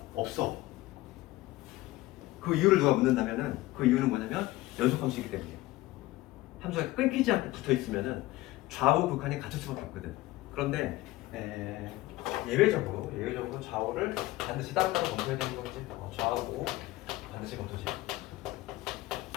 없어. 그 이유를 누가 묻는다면은 그 이유는 뭐냐면 연속함수이기 때문이에요. 함수가 끊기지 않고 붙어 있으면은 좌우극한이 같을 수밖에 없거든. 그런데 예외적으로 좌우를 반드시 따로따로 검토해야 되는 거지. 좌우 반드시 검토지.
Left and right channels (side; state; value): right; quieter; 18.0 dB